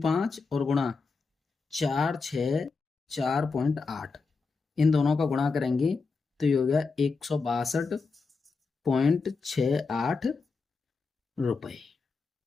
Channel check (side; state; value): right; quieter; 4.5 dB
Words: और गुणा 464.8 इन दोनों का गुणा करेंगे तो ये हो गया 162.68 रुपए,